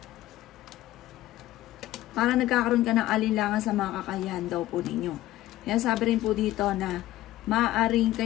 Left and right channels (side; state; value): right; quieter; 15.3 dB